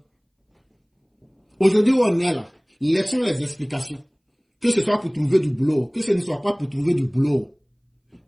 Aujourd'hui, où on est là, laissons les explications. Que ce soit pour trouver du boulot, que ce ne soit pas pour trouver du boulot.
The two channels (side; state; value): both; identical; correlation 1.00